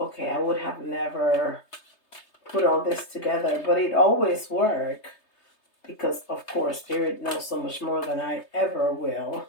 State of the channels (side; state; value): right; late; 3.3 ms